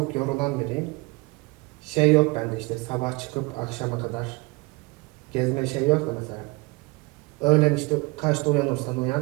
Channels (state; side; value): quieter; left; 24.8 dB